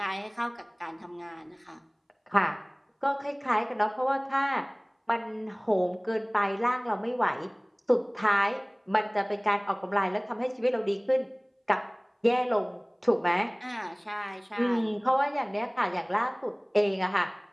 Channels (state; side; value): identical; both; correlation 1.00